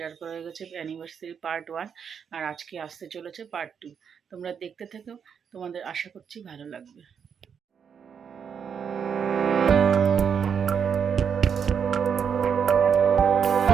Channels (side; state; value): left; quieter; 7.2 dB